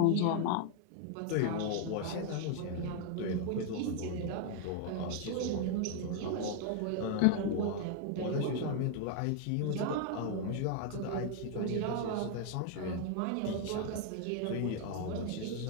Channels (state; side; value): different; both; correlation 0.00